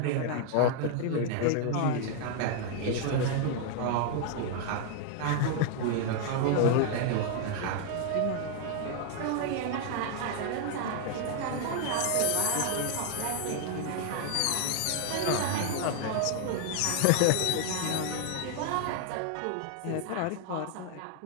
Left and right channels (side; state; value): both; different; correlation 0.00